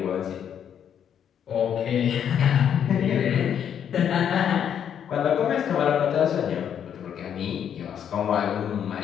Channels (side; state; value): right; quieter; 8.8 dB